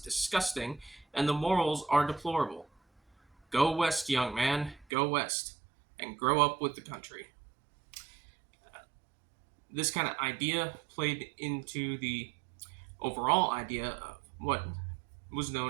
and the morals are deplorable. Go west, young man, go west, and grow up with the country. This kind of idea played into the overall idea of what was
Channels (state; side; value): drops out; left; at 4.9 s